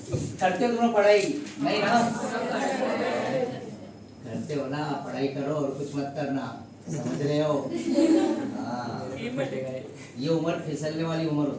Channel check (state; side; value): identical; both; correlation 1.00